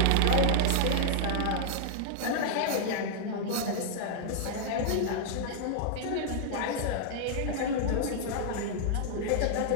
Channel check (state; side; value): different; both; correlation -0.01